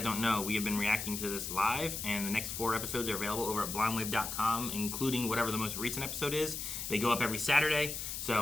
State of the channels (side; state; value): left; noise; hiss, 5 dB below the sound